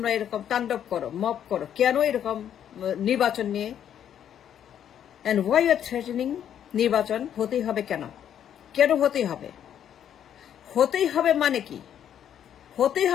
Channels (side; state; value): right; quieter; 9.7 dB